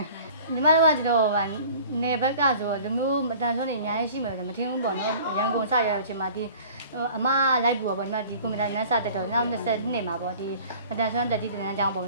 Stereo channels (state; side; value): inverted; both; correlation -0.46